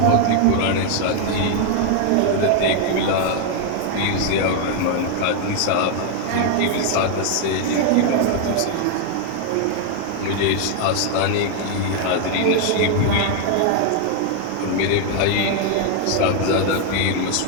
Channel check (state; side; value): different; both; correlation 0.00